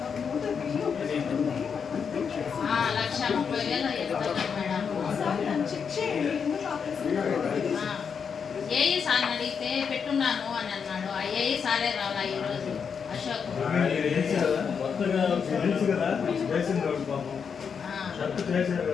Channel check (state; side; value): quieter; right; 6.5 dB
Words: $1,30,000 మేడం. ఏఈ సార్ అడిగితే పెట్టున్నాను అని అన్నాడు. ఆ ఏఈ సారే రాలా ఈరోజు అశోక్.